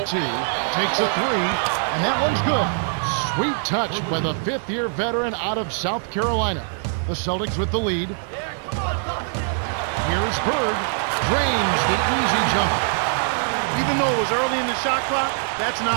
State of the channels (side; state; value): left; silent; digital silence